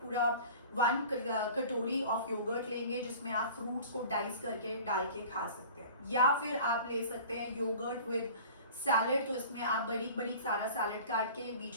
पूरा 1 कटोरी ऑफ योगर्ट लेंगे जिसमें आप फ्रूट्स को डाइस करके डाल के खा सकते हैं। या फिर आप ले सकते हैं योगर्ट विद सैलेड, तो इसमें आप बड़ी बड़ी सारा सैलेड काट के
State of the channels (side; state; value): both; inverted; correlation -0.42